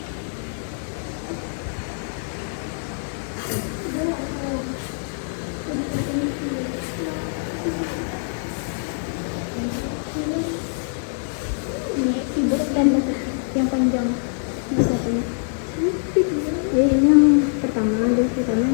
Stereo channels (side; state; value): right; silent; digital silence